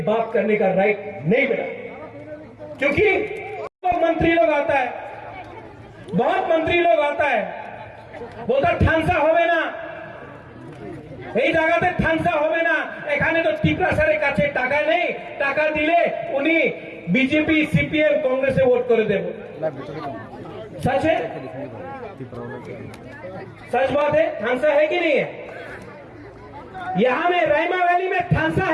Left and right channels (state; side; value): identical; both; correlation 1.00